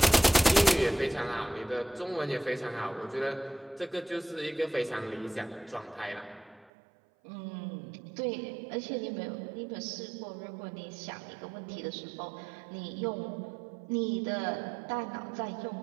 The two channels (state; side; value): drops out; left; at 6.7 s